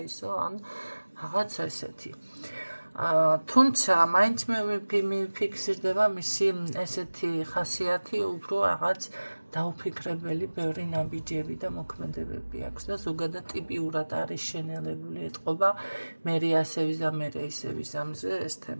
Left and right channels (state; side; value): inverted; both; correlation -1.00